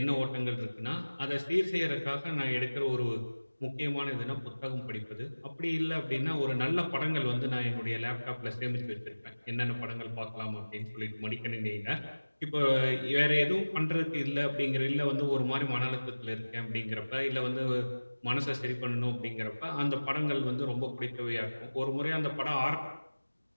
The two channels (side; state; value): both; inverted; correlation -1.00